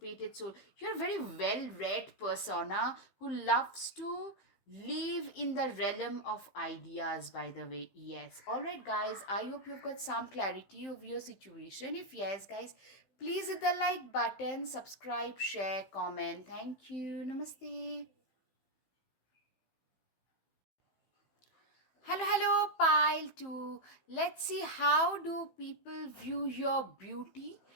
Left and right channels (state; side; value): late; right; 15 ms